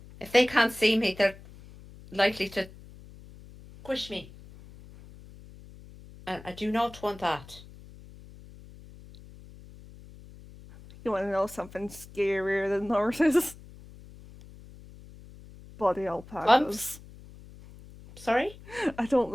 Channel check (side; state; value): left; noise; hum, 19 dB below the sound